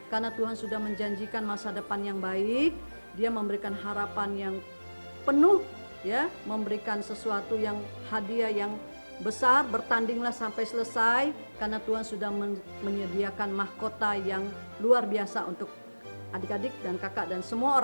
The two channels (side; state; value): both; inverted; correlation -1.00